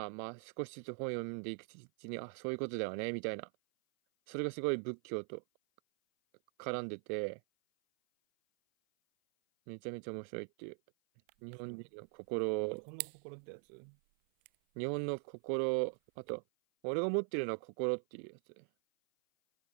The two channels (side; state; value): left; silent; 50 dB below the other